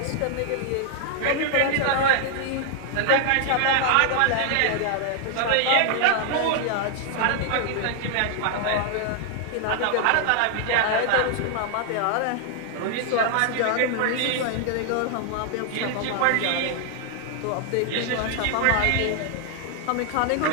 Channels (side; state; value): both; different; correlation 0.00